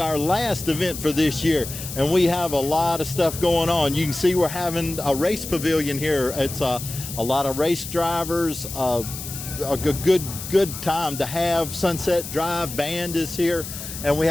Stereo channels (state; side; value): noise; left; hiss, 9 dB below the sound